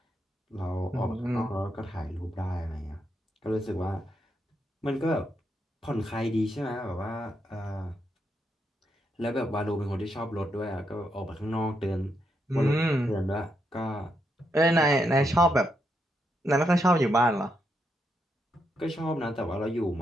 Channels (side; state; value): both; normal; correlation 0.80